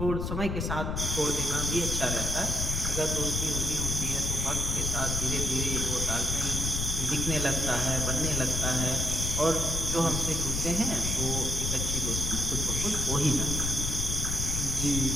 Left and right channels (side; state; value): left; noise; rumble, 1 dB below the sound